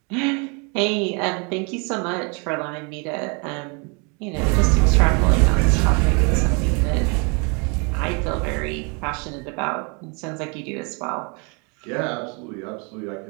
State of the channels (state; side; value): quieter; left; 33.5 dB